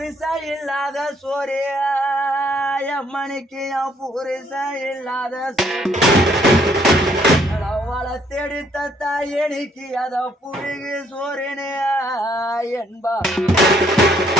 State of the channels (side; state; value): both; normal; correlation 0.67